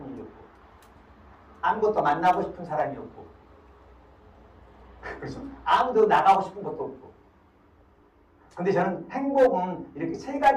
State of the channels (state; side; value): identical; both; correlation 1.00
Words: 일이 없고 아무것도 만나고 싶은 사람이 없고 그래서 아무도 나가고 싶은 것도 없고 근데 저는 행복은 이렇게